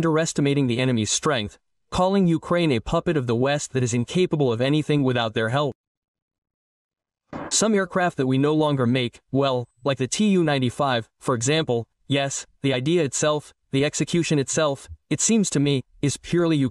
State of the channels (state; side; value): identical; both; correlation 1.00